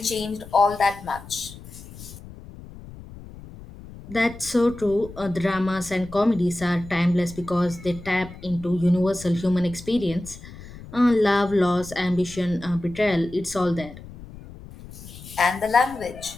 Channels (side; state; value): left; noise; rumble, 16 dB below the sound